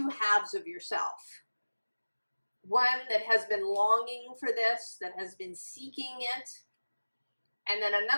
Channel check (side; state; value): both; inverted; correlation -1.00